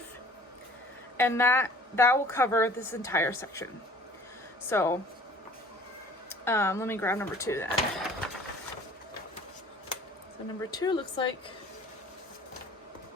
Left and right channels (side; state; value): both; normal; correlation 0.50